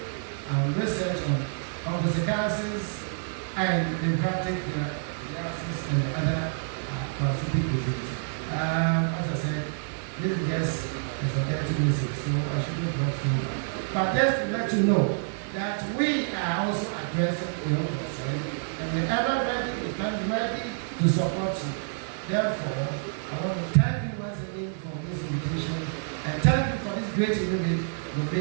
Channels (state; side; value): silent; left; 59 dB below the other